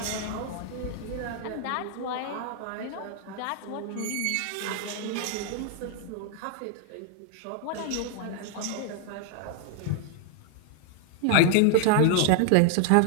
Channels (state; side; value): different; both; correlation 0.00